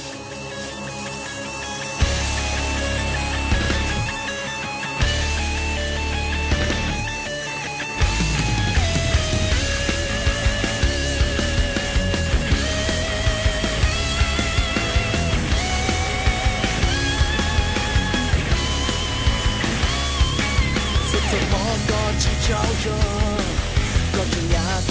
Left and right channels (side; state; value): both; identical; correlation 1.00